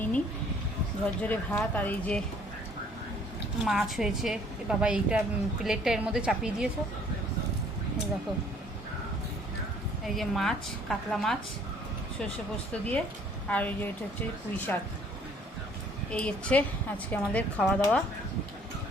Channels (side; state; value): both; normal; correlation 0.59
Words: নিই। ঝরঝরে ভাত আর এই যে মাছ হয়েছে। বাবা এইটা প্লেটটা এর মধ্যে চাপিয়ে দিয়েছো, এই দেখো। এই যে মাছ, কাতলা মাছ সর্ষে পোস্ত দিয়ে, আর এই যে এটা হচ্ছে পুঁই শাক। এই হচ্ছে আজকে আমাদের খাওয়া দাওয়া